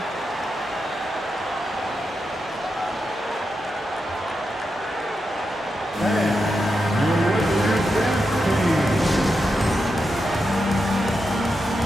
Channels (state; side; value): normal; both; correlation 0.87